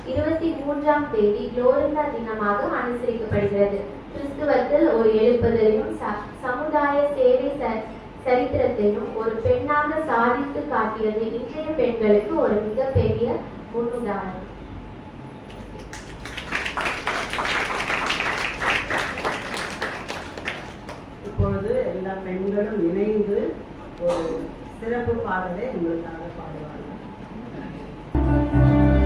23ஆம் தேதி குளோரிண்டா தினமாக அனுசரிக்கப்படுகிறது. கிறிஸ்துவத்தில் ஒரு எழுப்புதலையும் சமுதாய சேவை சரித்திரத்தையும் ஒரு பெண்ணாக சாதித்து காட்டியது இன்றைய பெண்களுக்கு ஒரு மிகப்பெரிய முன்னுதாரணம். இப்பொழுது எல்லா பெண்களும் இணைந்து ஒரு சிறப்பு பாடலை உங்களுக்காக பாடுவார்கள்.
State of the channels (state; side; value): identical; both; correlation 1.00